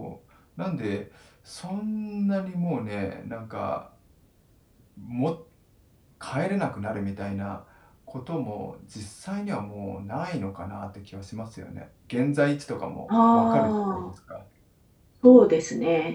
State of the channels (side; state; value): both; identical; correlation 1.00